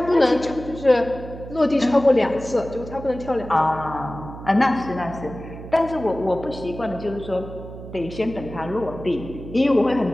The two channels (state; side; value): noise; right; hum, 13 dB below the sound